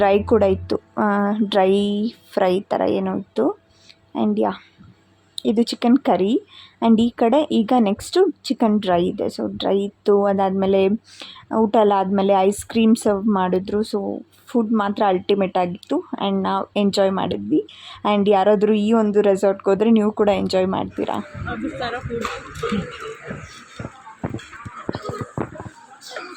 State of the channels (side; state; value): both; identical; correlation 1.00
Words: ಕೂಡ ಇತ್ತು, ಡ್ರೈ ಫ್ರೈ ಥರ ಏನೋ ಇತ್ತು. ಆ್ಯಂಡ್ ಇದು ಚಿಕನ್ ಕರಿ. ಆ್ಯಂಡ್ ಈ ಕಡೆ ಈಗ ನೆಕ್ಸ್ಟು ಚಿಕನ್ ಡ್ರೈ ಇದೆ. ಸೊ ಡ್ರೈ ಇತ್ತು. ಅದಾದಮೇಲೆ ಊಟ ಎಲ್ಲ ಆದಮೇಲೆ ಐಸ್ ಕ್ರೀಮ್ ಸರ್ವ್ ಮಾಡಿದ್ರು. ಸೊ ಫುಡ್ ಮಾತ್ರ ಅಲ್ಟಿಮೇಟ್ ಆಗಿತ್ತು. ಆ್ಯಂಡ್ ನಾವು ಎಂಜಾಯ್ ಮಾಡಿದ್ವಿ. ಆ್ಯಂಡ್ ಯಾರಾದರೂ ಈ ಒಂದು ರೆಸಾರ್ಟ್ಗೆ ಹೋದರೆ ನೀವು ಕೂಡ ಎಂಜಾಯ್ ಮಾಡ್ತೀರಾ.